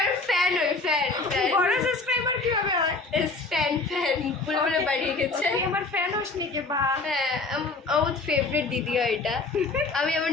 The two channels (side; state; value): right; quieter; 3.6 dB